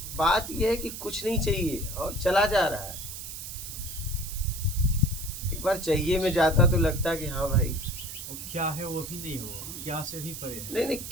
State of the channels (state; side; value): noise; right; hiss, 9 dB below the sound